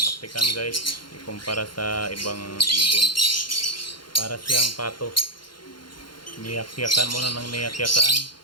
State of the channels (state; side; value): late; right; 0.72 ms